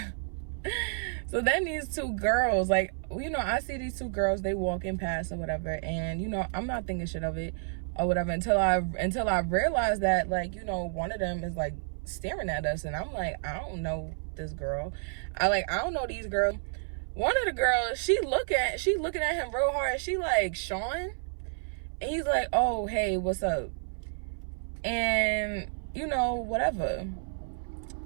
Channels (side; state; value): left; silent; 57 dB below the other